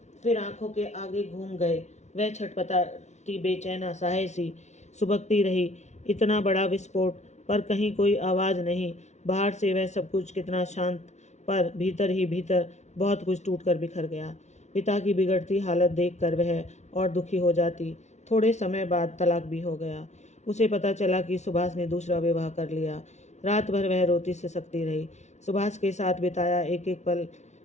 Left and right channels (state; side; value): late; right; 0.33 ms